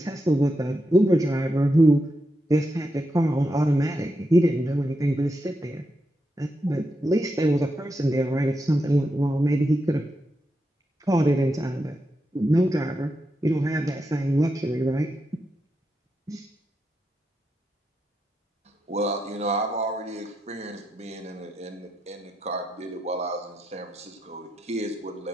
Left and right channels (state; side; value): normal; both; correlation 0.85